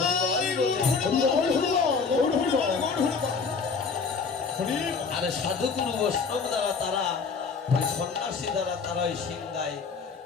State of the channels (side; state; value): right; quieter; 5.2 dB